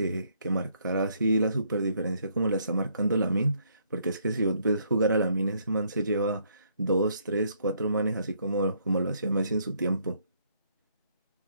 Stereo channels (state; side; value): inverted; both; correlation -0.69